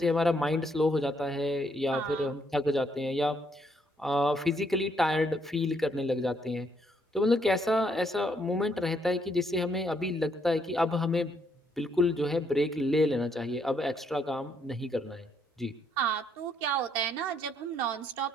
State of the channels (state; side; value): normal; both; correlation 0.72